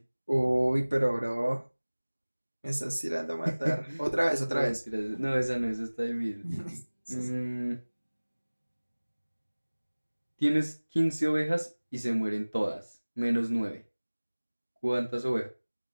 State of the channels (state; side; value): inverted; both; correlation -1.00